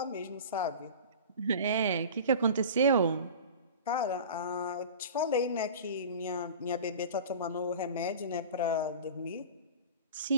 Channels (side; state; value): both; inverted; correlation -0.36